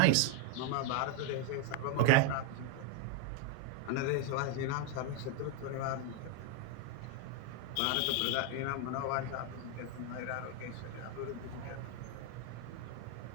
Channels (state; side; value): different; both; correlation 0.01